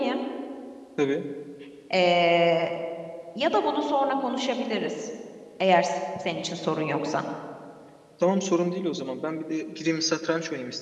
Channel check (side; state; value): both; identical; correlation 1.00